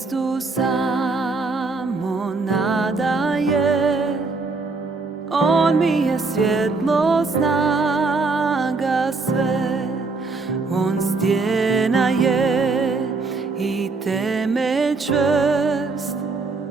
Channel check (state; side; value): quieter; left; 3.9 dB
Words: samo nadaje, On mi je svjetlo, snaga sve, On stjena je i temelj čvrst,